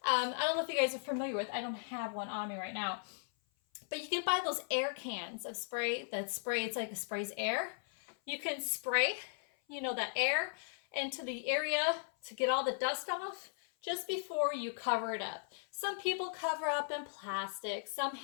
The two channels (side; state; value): right; silent; 53 dB below the other